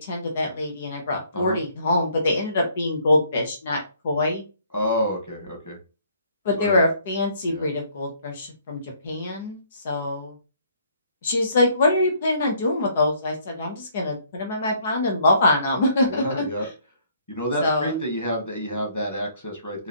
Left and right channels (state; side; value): inverted; both; correlation -0.63